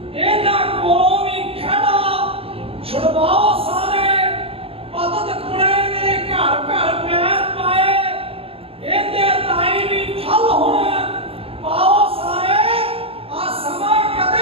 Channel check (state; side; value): late; left; 0.27 ms